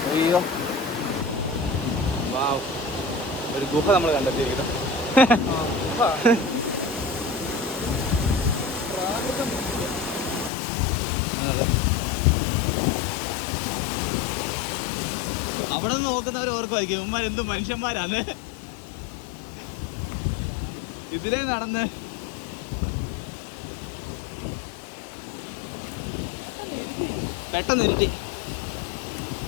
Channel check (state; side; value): drops out; right; at 10.5 s